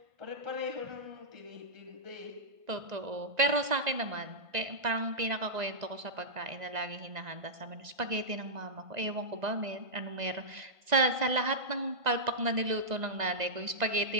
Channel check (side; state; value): left; late; 1.9 ms